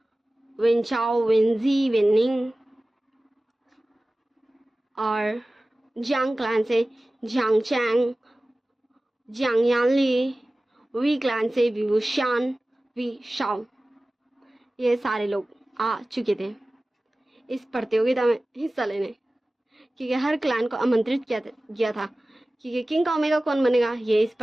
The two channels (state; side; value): normal; both; correlation 0.97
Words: विनचाओ, विनजी, विनिंग और जियांग क्लैन से Jiang Chang, Jiang Yanli, Wei clan से विवुशान, वी शाओ, ये सारे लोग आ चुके थे इस प्रतियोगिता में हिस्सा लेने, क्योंकि हर क्लैन को आमंत्रित किया था क्योंकि किंग का ओमेगा कौन बनेगा ये इस